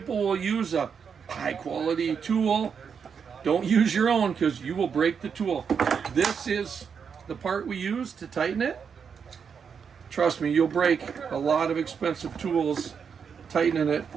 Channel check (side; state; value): left; quieter; 6.6 dB